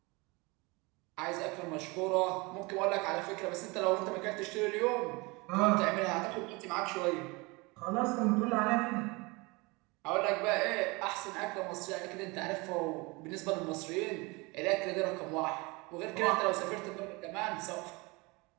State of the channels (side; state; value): left; quieter; 25.8 dB